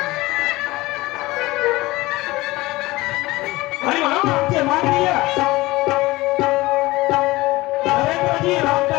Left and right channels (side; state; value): right; quieter; 19.9 dB